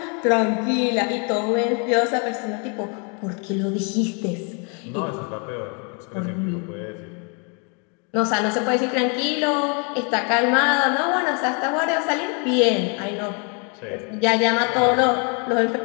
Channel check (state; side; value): quieter; right; 35.9 dB